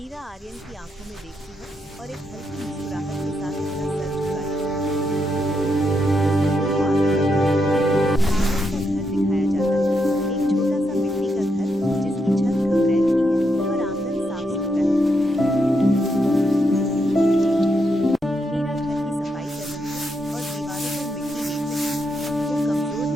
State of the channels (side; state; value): both; normal; correlation 0.81